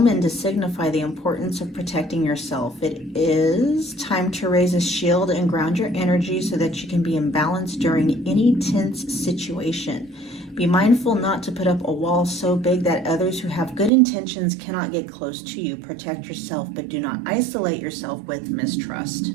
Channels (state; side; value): drops out; left; at 13.9 s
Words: to signify the importance of protecting yourself. It is time to raise a shield and ground your energy so that you can be in balance during any tense situation. Be mindful not to put up a wall so big that others who have good intentions cannot get close to you. Protect yourself, but do not isolate yourself with mistrust.